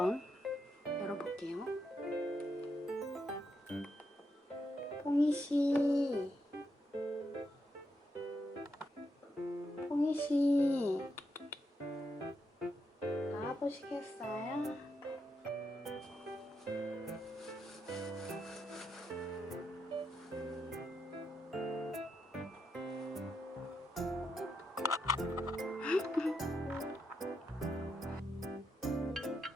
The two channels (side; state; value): both; normal; correlation 0.82